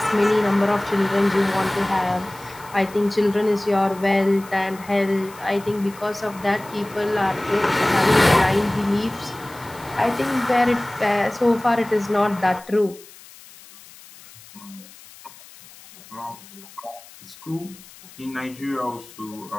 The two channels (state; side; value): noise; left; hiss, 21 dB below the sound